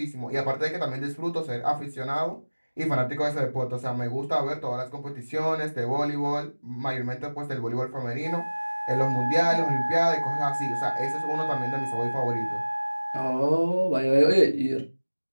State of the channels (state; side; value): inverted; both; correlation -1.00